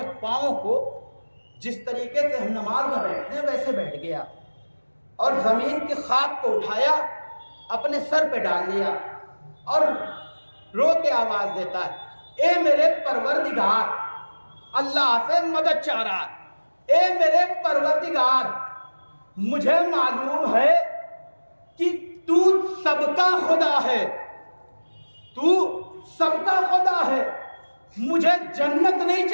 پاؤں کو جس طریقے سے ہم نماز میں بیٹھتے ہیں ویسے بیٹھ گیا، اور زمین کی خاک کو اٹھایا، اپنے سر پہ ڈال لیا، اور رو کے آواز دیتا ہے اے میرے پروردگار، اللہ سے مدد چاہ رہا ہے، اے میرے پروردگار مجھے معلوم ہے کہ تو سب کا خدا ہے، تو سب کا خدا ہے، مجھے جنت نہیں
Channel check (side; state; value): both; inverted; correlation -1.00